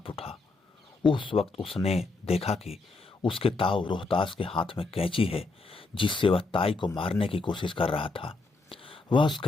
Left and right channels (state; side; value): quieter; right; 3.6 dB